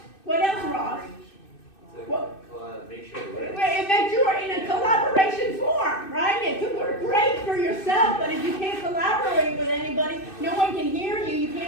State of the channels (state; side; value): late; right; 2.6 ms